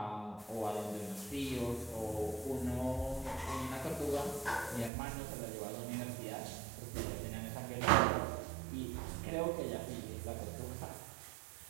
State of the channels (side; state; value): left; drops out; at 4.9 s